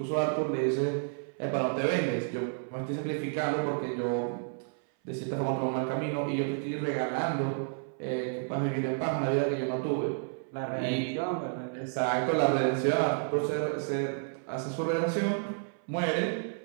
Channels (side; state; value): left; silent; 56 dB below the other